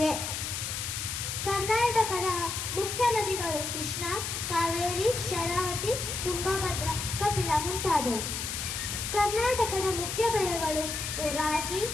ಕರ್ನಾಟಕದ ಮುಖ್ಯ ನದಿಗಳು ಕೃಷ್ಣ, ಕಾವೇರಿ, ಶರಾವತಿ, ತುಂಗಭದ್ರಾ, ಕಪಿಲ ಮುಂತಾದವು. ಕರ್ನಾಟಕದ ಮುಖ್ಯ ಬೆಳೆಗಳು ರಾಗಿ,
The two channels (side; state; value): left; noise; hiss, 4 dB below the sound